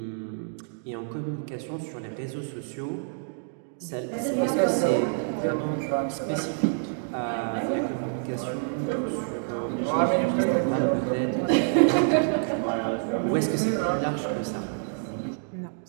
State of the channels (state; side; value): silent; left; digital silence